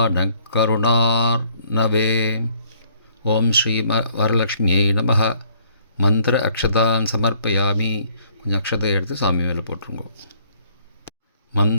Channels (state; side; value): inverted; both; correlation -0.63